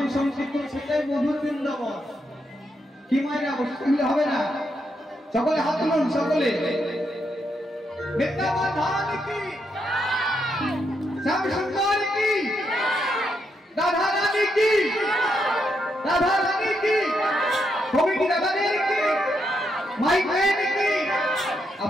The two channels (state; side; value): normal; both; correlation 0.80